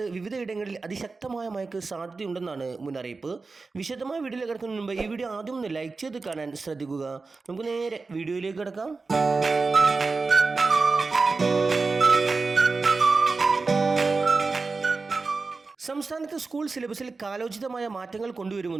വിവിധയിടങ്ങളിൽ അതിശക്തമായ മഴയ്ക്ക് സാധ്യതയുണ്ടെന്നാണ് മുന്നറിയിപ്പ്. വിശദമായ വീഡിയോയിലേക്ക് കിടക്കുന്നതിന് മുമ്പ് ഈ വീഡിയോ ആദ്യം ഒന്ന് ലൈക്ക് ചെയ്ത് കാണാൻ ശ്രദ്ധിക്കുക. നമുക്ക് നേരെ വീഡിയോയിലേക്ക് കിടക്കാം. സംസ്ഥാനത്ത് സ്കൂൾ സിലബസിൽ കാലോചിതമായ മാറ്റങ്ങൾ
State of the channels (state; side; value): quieter; left; 4.0 dB